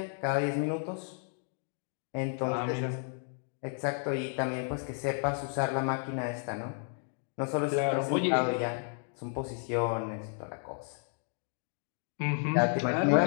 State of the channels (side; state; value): right; silent; 56 dB below the other